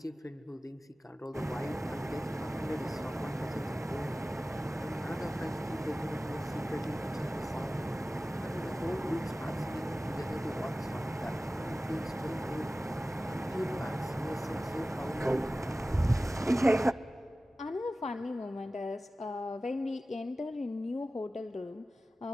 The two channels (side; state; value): both; normal; correlation 0.96